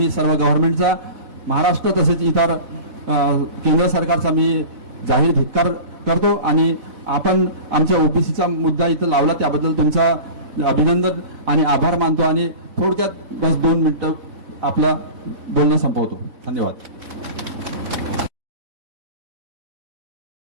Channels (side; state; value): left; late; 4.0 ms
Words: सर्व गव्हर्नमेंटचा, महाराष्ट्र तसेच इतर केंद्र सरकारचा मी जाहीर धिक्कार करतो. आणि आपण आमच्या OBCचा मुद्दा इथं लावला त्याबद्दल तुमचा अभिनंदन आणि आभार मानतो. आणि थोडक्यात बस 2 मिनिटं आपला बोलणं संपवतो. धन्यवाद.